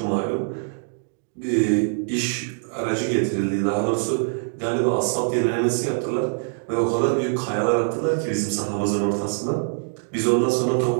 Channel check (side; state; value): left; silent; 63 dB below the other